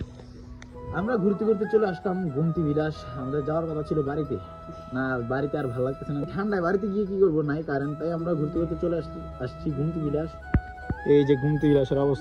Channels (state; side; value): identical; both; correlation 1.00